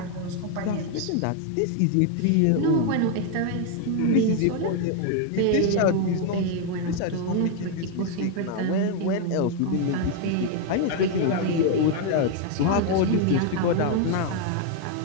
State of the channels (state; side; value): different; both; correlation 0.01